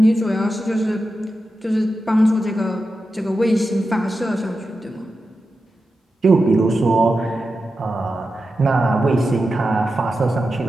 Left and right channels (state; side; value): normal; both; correlation 0.91